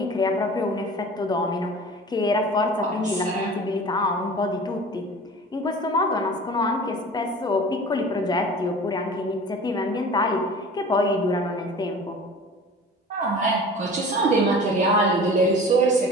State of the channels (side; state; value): both; normal; correlation 0.40